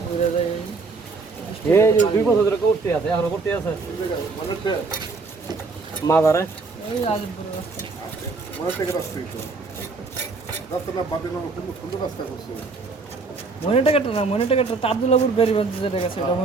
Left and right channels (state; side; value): quieter; left; 4.1 dB